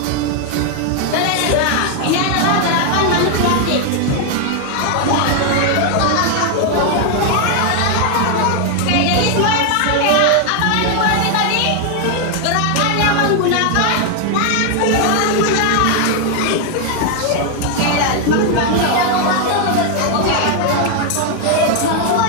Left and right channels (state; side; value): different; both; correlation 0.00